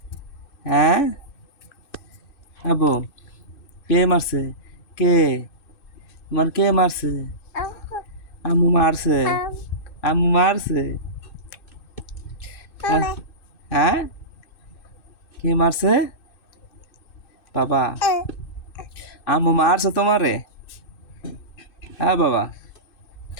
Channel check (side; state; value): right; late; 2.6 ms